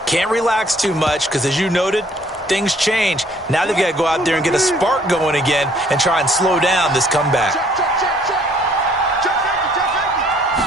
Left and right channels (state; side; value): normal; both; correlation 0.61